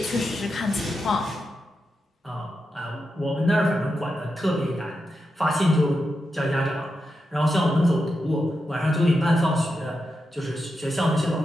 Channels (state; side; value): normal; both; correlation 0.87